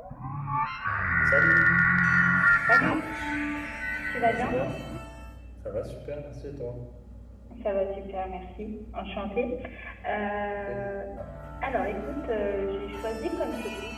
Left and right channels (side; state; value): both; identical; correlation 1.00